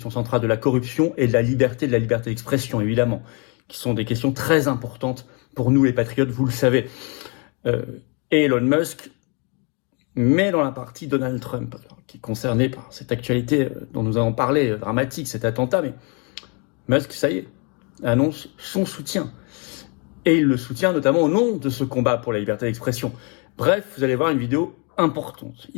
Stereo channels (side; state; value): right; quieter; 33.9 dB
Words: centrale de la corruption et de la liberté d'expression, évidemment, qui sont des questions très importantes pour nous les patriotes, vous le savez. Et Elon Musk, mais dans la partie Donald Trump, qui est concerné par cette actualité dont nous avons parlé, dramatique, cet attentat, mais Musk, ça y est, annonce son soutien. Et il le soutient notamment au nom de ce combat pour la liberté d'expression. Bref, vous allez voir une vidéo importante.